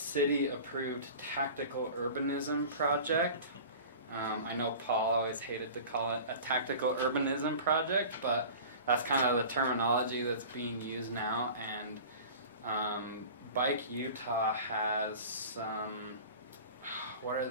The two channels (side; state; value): both; inverted; correlation -0.39